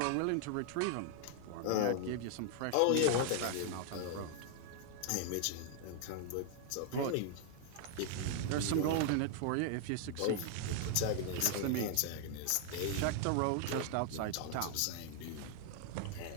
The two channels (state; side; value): different; both; correlation 0.00